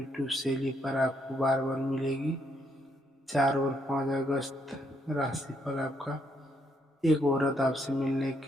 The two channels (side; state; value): both; normal; correlation 0.74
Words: शैली पर आपको बार बार मिलेगी। 4 और 5 अगस्त राशिफल आपका। एक औरत आपसे मिलने